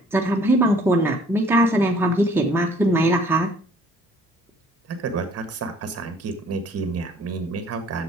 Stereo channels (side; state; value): both; normal; correlation 0.57